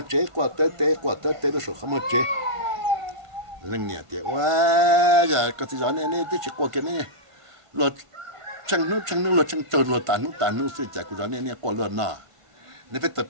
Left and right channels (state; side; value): late; left; 1.5 ms